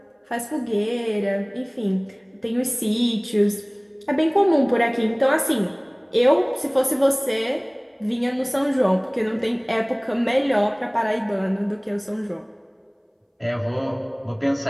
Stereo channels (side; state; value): both; identical; correlation 1.00